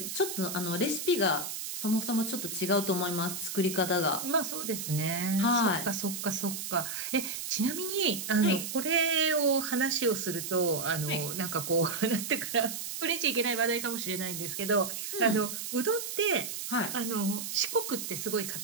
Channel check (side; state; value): right; noise; hiss, 6 dB below the sound